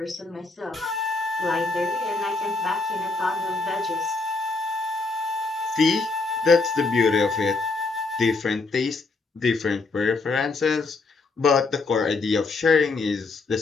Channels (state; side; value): quieter; right; 3.7 dB